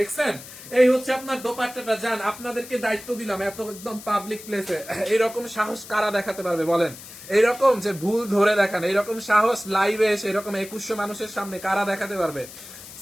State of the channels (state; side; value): noise; left; hiss, 16 dB below the sound